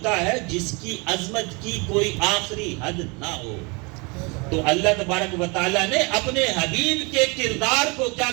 ہے جس کی عظمت کی کوئی آخری حد نہ ہو۔ تو اللہ تبارک و تعالیٰ نے اپنے حبیب کے کردار کو کیا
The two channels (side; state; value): left; quieter; 29.3 dB